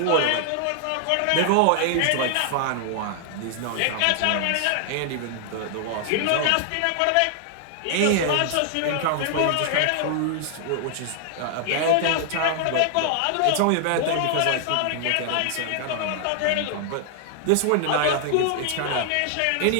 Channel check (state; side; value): different; both; correlation 0.00